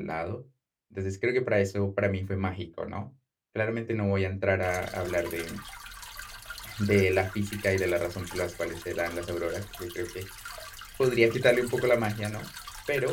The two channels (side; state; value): both; identical; correlation 1.00